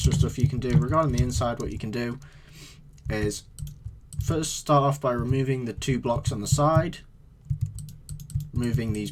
stuff you can do. Regarding the inside, what you can do is first start off by removing the 2 blocks on the side, removing these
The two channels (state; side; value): identical; both; correlation 1.00